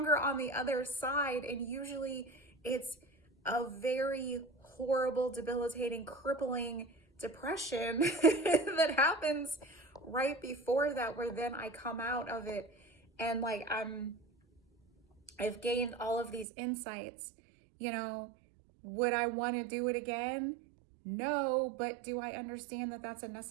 on the other side. And usually it's a very horrible, debilitating, crippling depression that happens right before that, where then I come out of it and I've gained all of these insights. Would I want to do it again? No, but do I understand that that's a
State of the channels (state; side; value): drops out; left; at 16.4 s